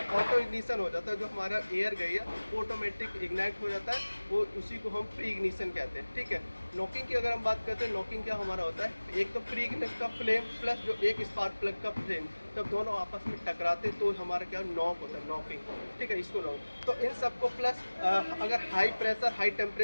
इग्निशन हो जाता है। जो हमारा एयर गई है वो ऑटोमेटिक इग्नाइट हो जाता है, वो उसी को हम प्री इग्निशन कहते हैं। ठीक है, नॉकिंग की अगर हम बात करते हैं, नॉकिंग क्या हमारा होता है, एक तो प्री इग्निशन का फ्लेम प्लस जो एक स्पार्क प्लग का फ्लेम, जब दोनों आपस में टकराते तो हमारा क्या नॉक होता है, नॉकिंग। ठीक है, इसको नॉक। तो इन सबको प्लस अगर हाई प्रेशर हाई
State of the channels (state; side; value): inverted; both; correlation -1.00